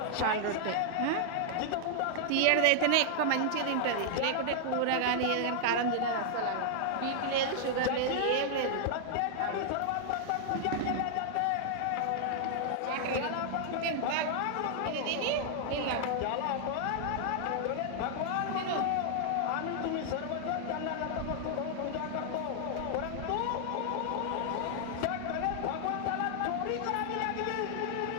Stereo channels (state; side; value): different; both; correlation -0.01